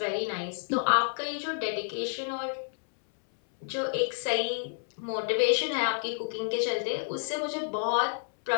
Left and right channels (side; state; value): right; silent; 58 dB below the other